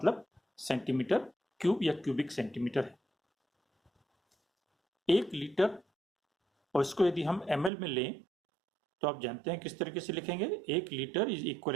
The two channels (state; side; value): drops out; left; at 7.7 s